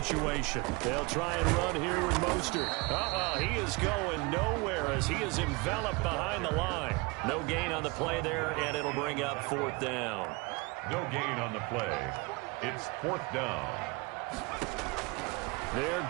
They'll try and run here with Mostert. He is going nowhere as he is enveloped behind the line. No gain on the play there, and it'll bring up 4th down. No gain on the play. It's 4th down. They're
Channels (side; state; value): left; quieter; 26.7 dB